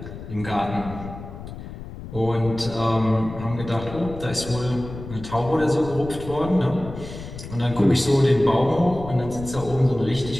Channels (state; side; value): noise; left; rumble, 12 dB below the sound